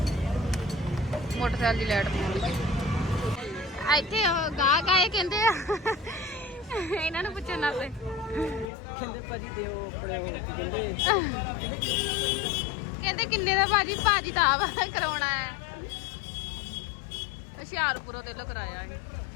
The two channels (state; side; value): drops out; right; at 8.7 s